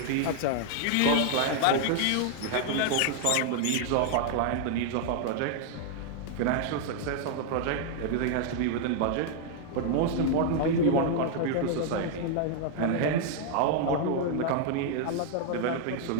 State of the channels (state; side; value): different; both; correlation 0.00